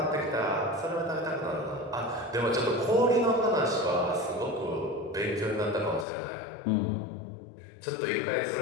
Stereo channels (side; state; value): right; drops out; at 6.1 s